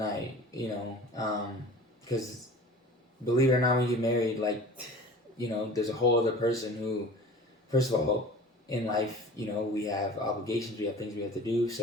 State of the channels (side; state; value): both; normal; correlation 0.41